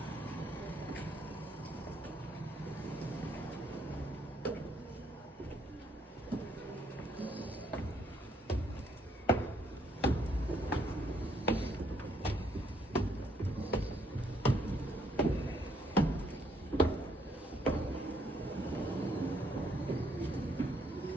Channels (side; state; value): both; normal; correlation 0.69